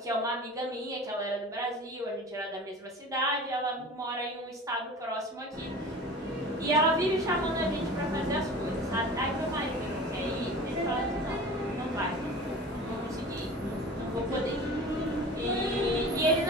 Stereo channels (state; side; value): normal; both; correlation 0.38